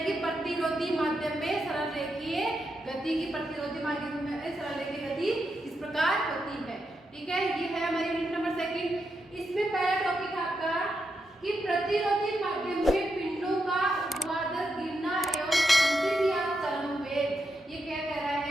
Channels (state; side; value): normal; both; correlation 0.84